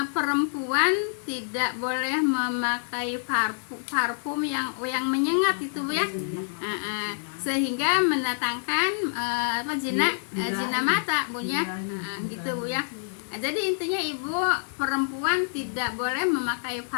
perempuan tidak boleh memakai parfum yang menyengat itu Bu ya, sehingga mendatangkan zina mata Bu ya, gitu Bu ya. Jadi intinya Ibu, perempuan tidak boleh memakai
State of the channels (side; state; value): right; silent; digital silence